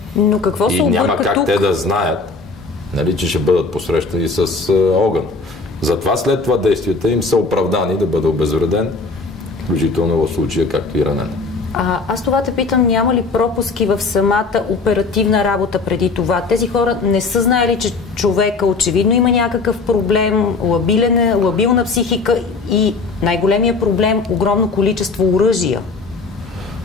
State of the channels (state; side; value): quieter; right; 4.0 dB